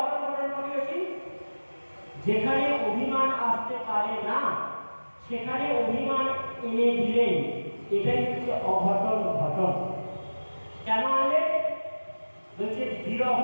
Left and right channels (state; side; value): inverted; both; correlation -1.00